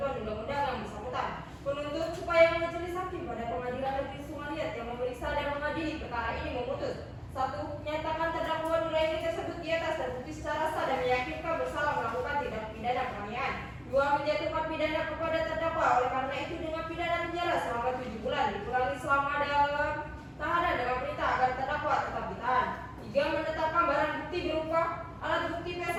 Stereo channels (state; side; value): identical; both; correlation 1.00